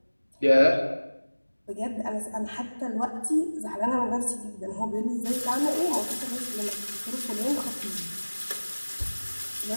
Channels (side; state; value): both; inverted; correlation -1.00